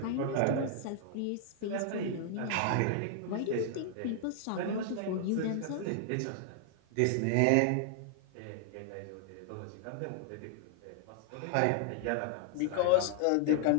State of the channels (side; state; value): both; different; correlation 0.00